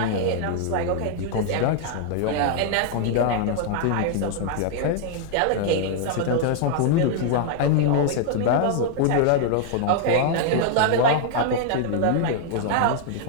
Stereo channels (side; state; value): both; different; correlation 0.00